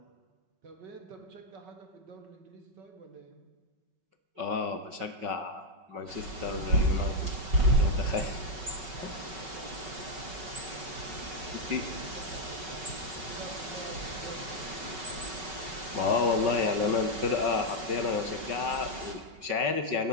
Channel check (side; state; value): left; late; 5.3 ms